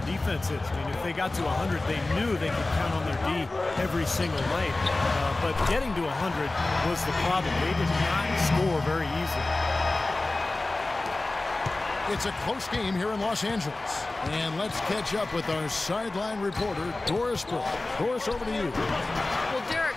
defense is. I mean, if they got to 100, they knew they could count on their D every single night. But getting to 100 was the problem. They did not score very easily. It's a close game here in Los Angeles. And let's catch up with our sideline reporter, Doris Bloe. Doris, over to you. Well,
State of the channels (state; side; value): quieter; right; 3.0 dB